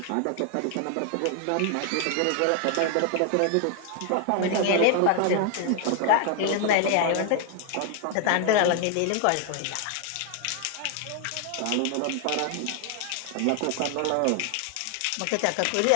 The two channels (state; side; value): different; both; correlation 0.00